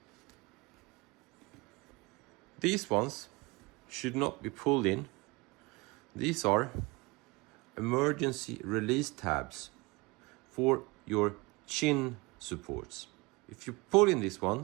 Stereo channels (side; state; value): left; quieter; 24.8 dB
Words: These ones should not be pulled in. These are emergency release tabs for your chin supports. If you pull in these